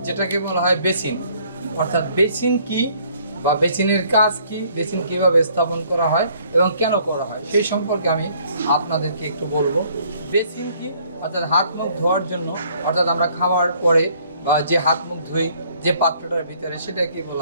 যেটাকে বলা হয় বেসিন। অর্থাৎ বেসিন কি বা বেসিনের কাজ কি, বেসিন কিভাবে স্থাপন করা হয় এবং কেন করা হয় সেই সম্পর্কে আমি আপনাদেরকে একটু বলবো। বেসিন কি অর্থাৎ হাত মুখ ধোয়ার জন্য, অর্থাৎ আমরা খাওয়ার পরে বা যে হাত মুখ ধুই যে পাত্রটার ভিতরে সেটাকে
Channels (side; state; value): both; inverted; correlation -0.62